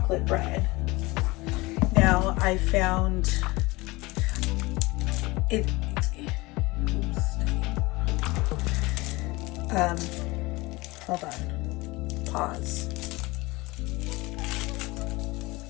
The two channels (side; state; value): right; quieter; 22.4 dB